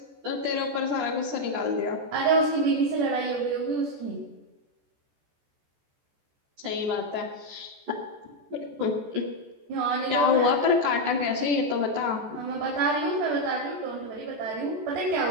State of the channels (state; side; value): late; left; 14 ms